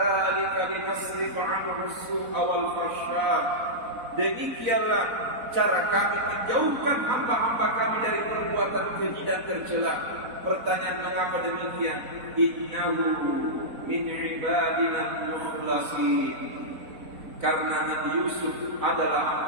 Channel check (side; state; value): left; late; 4.1 ms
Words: linasrifa 'anhu as-su'a wal fahsya. Demikianlah cara kami menjauhkan hamba-hamba kami dari perbuatan keji dan tercela. Pertanyaan mengapa demikian? Innahu min ibadina mukhlasin. Karena Nabi Yusuf adalah